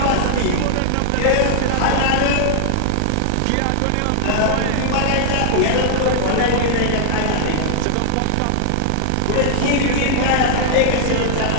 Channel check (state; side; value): different; both; correlation -0.01